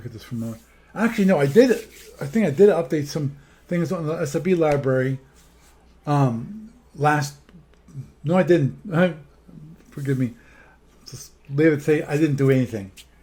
this for a moment. Actually, no, I did it. I think I did update some things on the SB library. No, I didn't. Forgive me. Just leave it say I didn't do anything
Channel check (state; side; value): identical; both; correlation 1.00